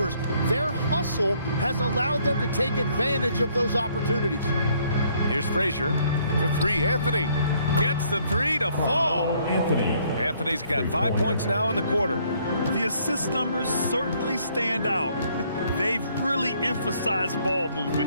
Their hustle has allowed them to take advantage of those opportunities. Here's Frazier for 3. Anthony gets the 3 to fall. Anthony's got 5 points now in the quarter. The assist numbers certainly stand out. They've really emphasized ball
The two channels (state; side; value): inverted; both; correlation -0.65